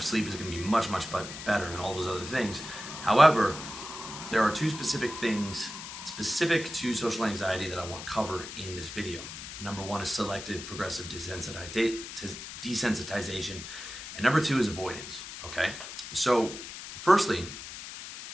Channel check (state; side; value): noise; left; hiss, 10 dB below the sound